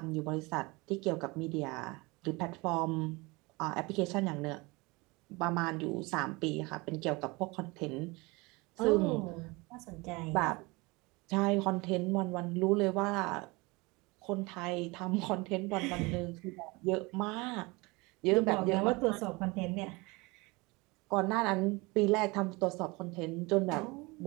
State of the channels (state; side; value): quieter; left; 25.0 dB